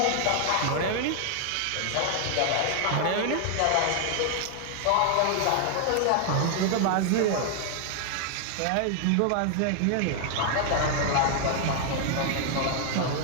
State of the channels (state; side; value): different; both; correlation 0.00